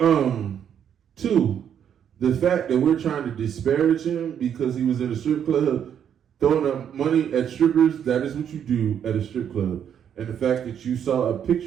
2, the fact that we're trying to disparage him because he was in a strip club throwing up money at strippers, that is what you do at a strip club. And the fact that you saw a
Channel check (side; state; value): left; quieter; 8.8 dB